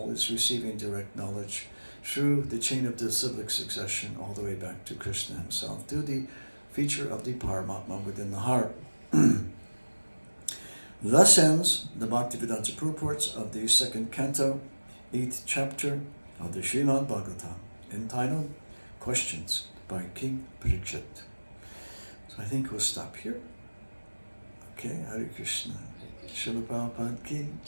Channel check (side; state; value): both; inverted; correlation -1.00